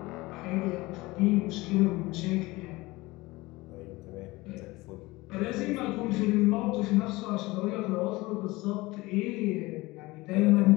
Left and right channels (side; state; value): right; quieter; 21.1 dB